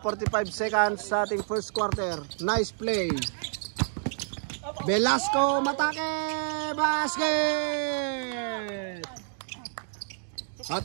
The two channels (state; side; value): silent; left; digital silence